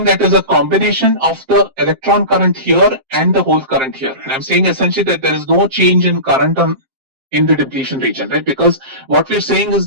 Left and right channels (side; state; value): left; late; 7.6 ms